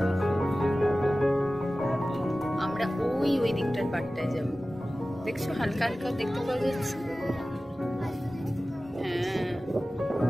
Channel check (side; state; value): both; normal; correlation 0.96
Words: আমরা ওই দিকটার পাটটায় যাব, দেখছো? হালকা হালকা দেখতে পাওয়া যাচ্ছে। হ্যাঁ,